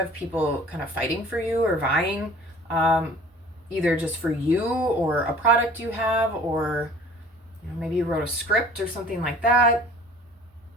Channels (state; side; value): normal; both; correlation 0.48